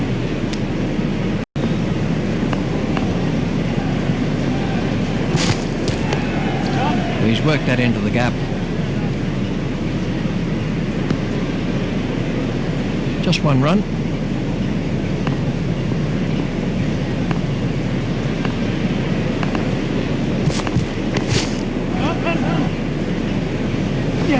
He's worked that into the gap. Just one run.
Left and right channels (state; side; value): identical; both; correlation 1.00